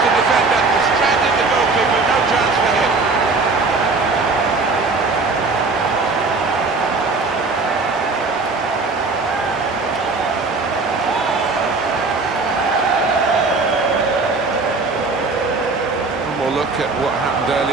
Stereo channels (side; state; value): left; quieter; 3.8 dB